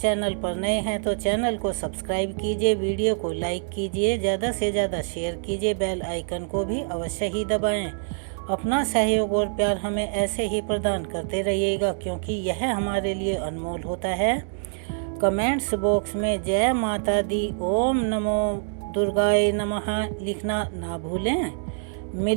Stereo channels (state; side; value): silent; left; digital silence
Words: पर नए हैं तो चैनल को सब्सक्राइब कीजिए, वीडियो को लाइक कीजिए, ज़्यादा से ज़्यादा शेयर कीजिए, बेल आइकन को भी अवश्य ही दबाएं। अपना सहयोग और प्यार हमें ऐसे ही प्रदान करते रहिएगा, क्योंकि यह हमारे लिए अनमोल होता है। कमेंट्स बॉक्स में जय माता दी, ओम नमो दुर्गाए नमः लिखना ना भूलें।